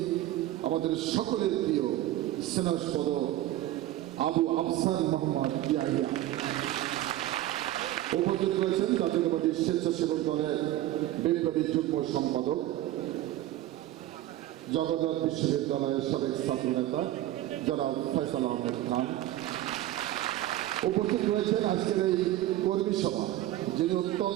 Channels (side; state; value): left; quieter; 14.4 dB